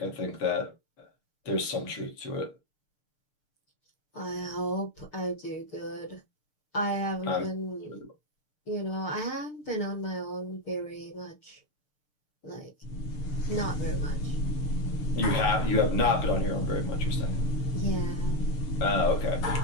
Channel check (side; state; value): right; late; 6.7 ms